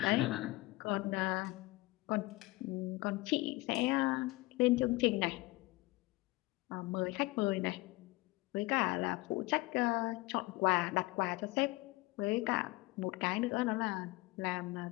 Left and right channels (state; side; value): quieter; right; 21.4 dB